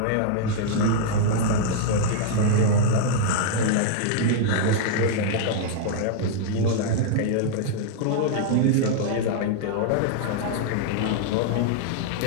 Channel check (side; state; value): both; different; correlation -0.01